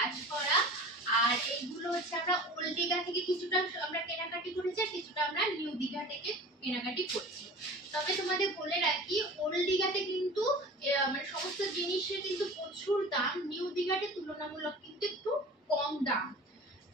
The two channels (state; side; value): normal; both; correlation 0.39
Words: করা, আর এইগুলো হচ্ছে আমরা ওল্ড দীঘা থেকে কিছুটা আমরা কেনাকাটি করেছি, আর কিছুটা আমরা নিউ দীঘা থেকে কেনাকাটি করছি। তবে তোমাদের বলে রাখি, ওল্ড দীঘাতে কিন্তু মানে সমস্ত জিনিসের কিন্তু প্রচুর দাম, নিউ দীঘাতে তুলনামূলক কিন্তু একটু কম দাম।